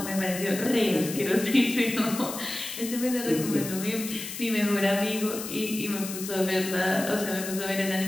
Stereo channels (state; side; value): noise; left; hiss, 8 dB below the sound